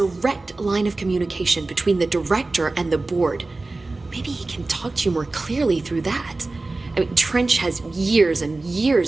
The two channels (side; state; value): left; quieter; 3.3 dB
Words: line of communication between the director and the board. Maybe he can talk to you more clearly through that. I mean, Trench has years and